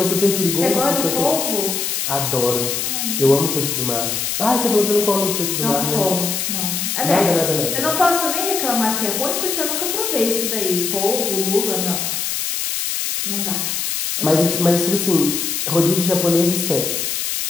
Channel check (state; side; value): noise; left; hiss, 1 dB below the sound